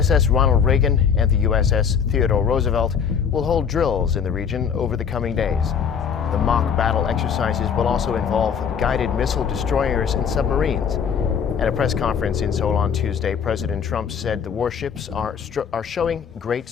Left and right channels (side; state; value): right; quieter; 7.1 dB